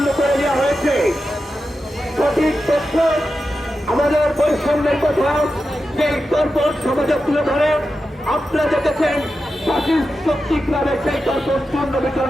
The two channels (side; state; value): both; normal; correlation 0.91